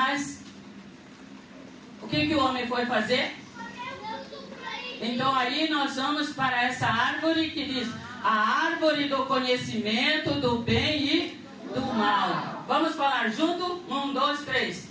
o que o homem foi fazer? Então aí nós vamos para essa árvore que diz a árvore do conhecimento do bem e do mal. Vamos falar junto? 1, 2, 3.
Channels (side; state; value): both; identical; correlation 1.00